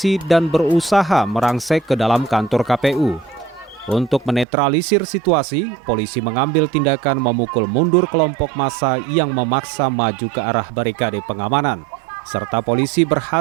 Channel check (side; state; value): left; drops out; at 4.5 s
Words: dan berusaha merangsek ke dalam kantor KPU. Untuk menetralisir situasi, polisi mengambil tindakan memukul mundur kelompok massa yang memaksa maju ke arah barikade pengamanan. Serta polisi